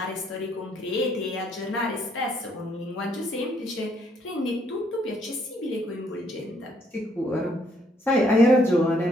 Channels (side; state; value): both; normal; correlation 0.69